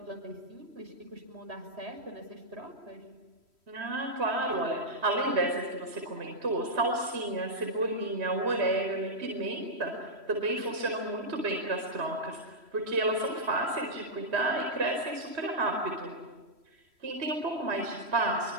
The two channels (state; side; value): late; left; 3.1 ms